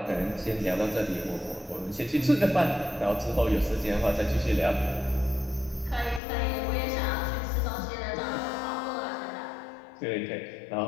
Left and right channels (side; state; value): right; drops out; at 6.2 s